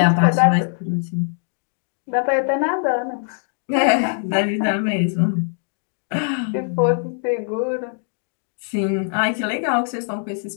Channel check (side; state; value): right; silent; 61 dB below the other